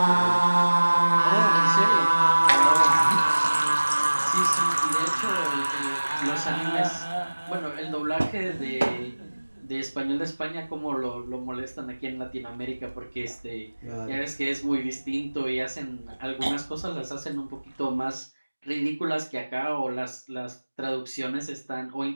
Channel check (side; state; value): both; inverted; correlation -1.00